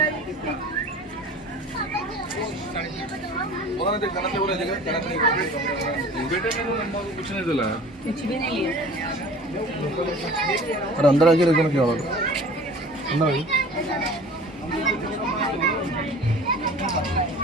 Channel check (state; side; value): normal; both; correlation 0.43